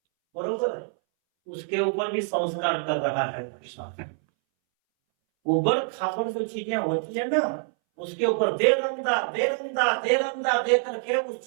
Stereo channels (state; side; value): silent; left; 61 dB below the other